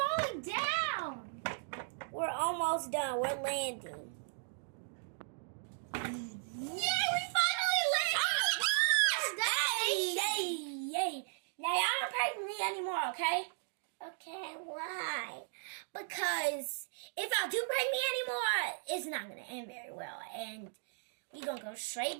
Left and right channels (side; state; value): left; silent; digital silence